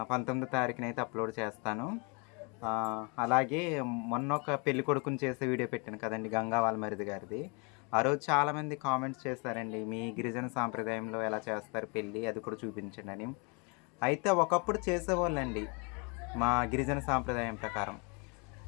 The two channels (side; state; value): right; quieter; 32.7 dB